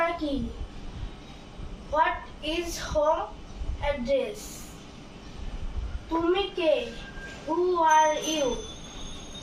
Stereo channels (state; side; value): identical; both; correlation 1.00